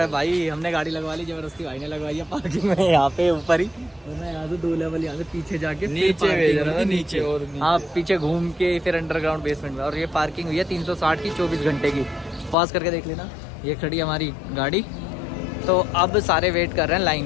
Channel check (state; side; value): drops out; right; at 12.6 s